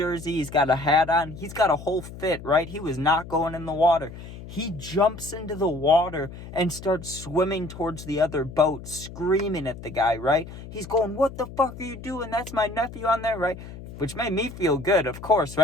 he's got a hat on, he's got a whole fit, right? He was not going in the water. He jumps into the water and starts swimming towards the other boat, screaming at the guy, right? He's going, what the fuck are you doing? That's my nephew on there, right? Which made me feel good, of course,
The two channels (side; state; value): left; noise; hum, 13 dB below the sound